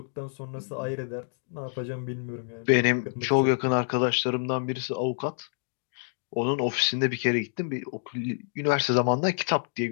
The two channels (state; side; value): silent; right; digital silence